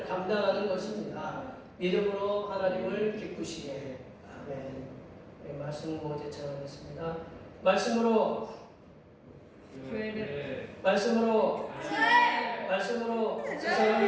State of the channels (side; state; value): both; identical; correlation 1.00